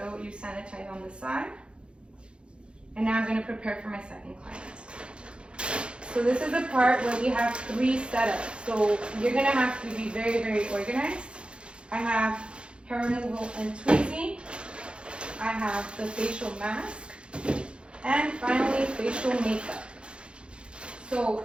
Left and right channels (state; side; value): late; left; 0.056 ms